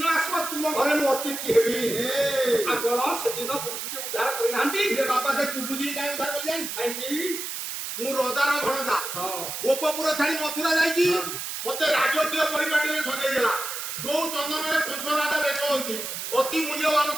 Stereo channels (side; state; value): right; noise; hiss, 5 dB below the sound